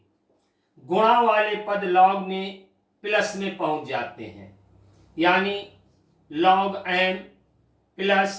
गुणा वाले पद लॉग में प्लस में पहुंच जाते हैं, यानी log n plus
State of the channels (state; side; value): identical; both; correlation 1.00